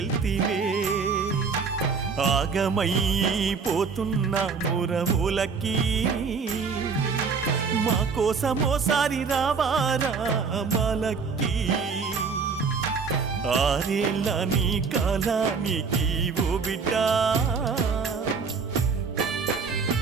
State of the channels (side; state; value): left; quieter; 5.3 dB